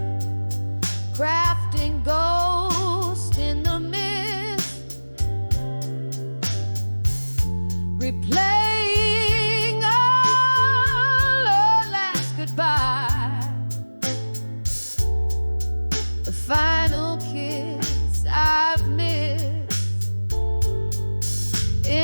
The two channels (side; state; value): both; inverted; correlation -1.00